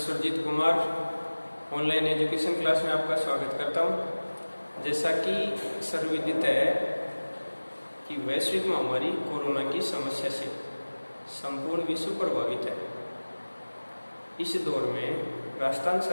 Kumar online education class में आपका स्वागत करता हूं। जैसा कि सर्वविदित है कि वैश्विक महामारी कोरोना की समस्या से संपूर्ण विश्व प्रभावित है। इस दौर में राजस्थान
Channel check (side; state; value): both; inverted; correlation -1.00